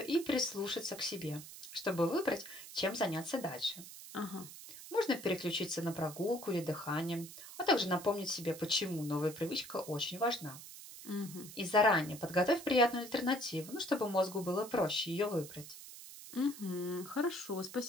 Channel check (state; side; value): noise; right; hiss, 14 dB below the sound